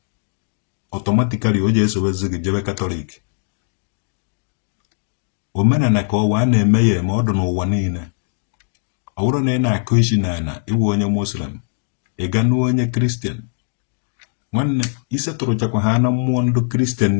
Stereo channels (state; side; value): silent; right; digital silence